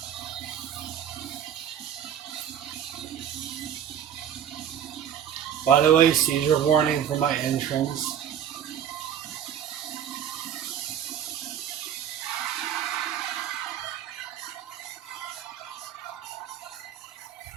By the way, seizure warning for my entrance.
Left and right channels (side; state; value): left; quieter; 9.5 dB